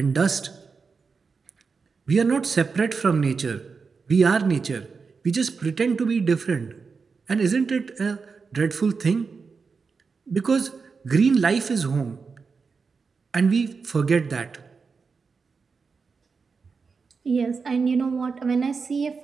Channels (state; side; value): quieter; left; 5.0 dB